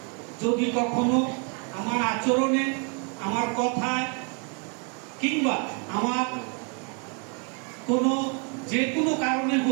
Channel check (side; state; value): left; quieter; 36.6 dB